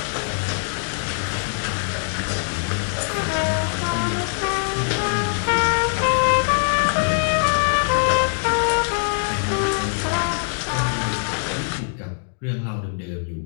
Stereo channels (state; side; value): silent; right; digital silence